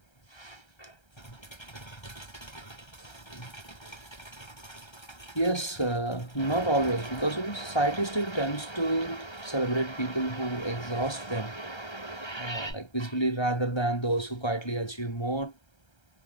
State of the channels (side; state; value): right; late; 1.3 ms